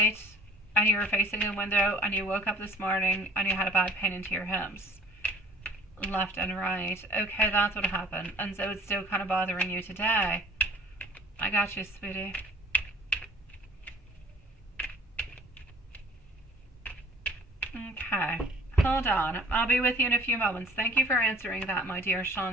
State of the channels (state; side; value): normal; both; correlation 0.50